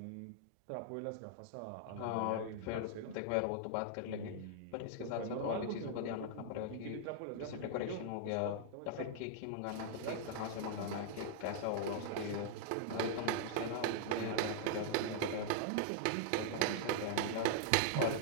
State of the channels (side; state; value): both; different; correlation -0.01